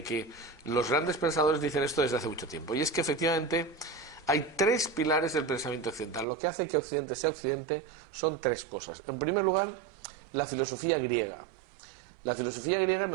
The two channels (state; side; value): drops out; left; at 6.2 s